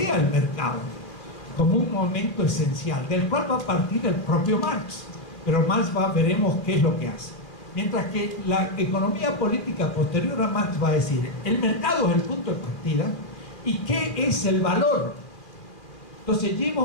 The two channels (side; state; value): right; late; 2.5 ms